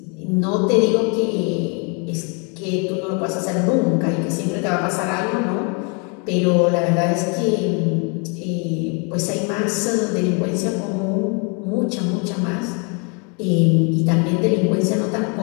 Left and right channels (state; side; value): quieter; right; 34.7 dB